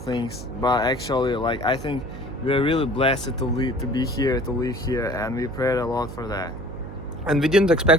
but actually like I think we're really blessed to be here, to live here, and we prayed a lot for that. And we didn't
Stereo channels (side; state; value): right; noise; hum, 11 dB below the sound